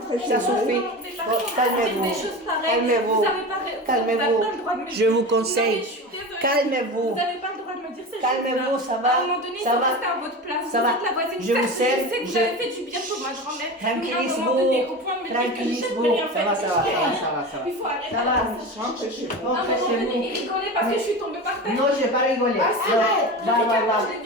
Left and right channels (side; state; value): both; normal; correlation 0.28